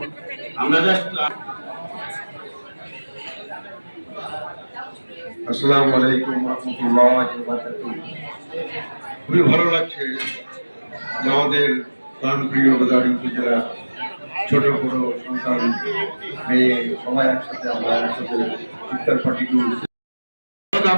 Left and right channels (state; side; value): inverted; both; correlation -1.00